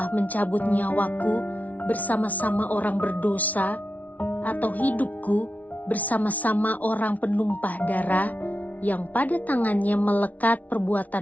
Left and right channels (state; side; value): late; right; 0.072 ms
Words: mencabut nyawaku bersama-sama orang berdosa, atau hidupku bersama-sama orang penumpah darah yang pada tangannya melekat